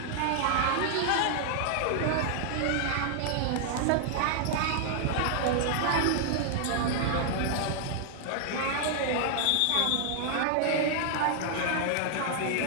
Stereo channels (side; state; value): both; different; correlation -0.01